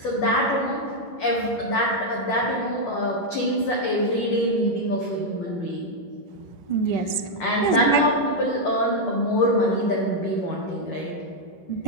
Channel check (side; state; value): right; late; 11 ms